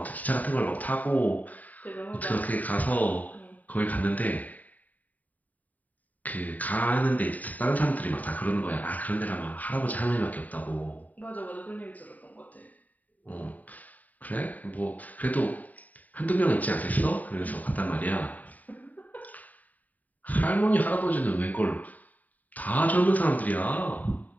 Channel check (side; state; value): right; late; 0.076 ms